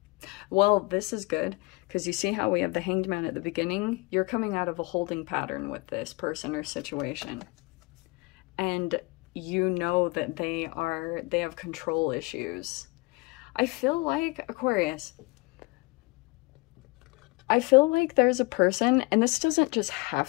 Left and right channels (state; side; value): quieter; right; 25.6 dB